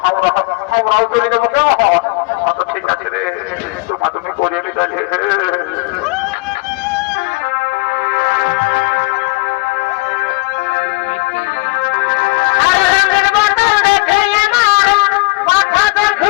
আমরাও চলে যাবো কেউ আচ্ছা ঠিক আছে রে তোমা তুমি করিয়ে নিতে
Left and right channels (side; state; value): right; quieter; 25.6 dB